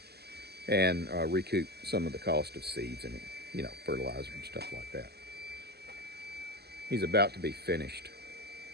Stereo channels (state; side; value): late; left; 0.47 ms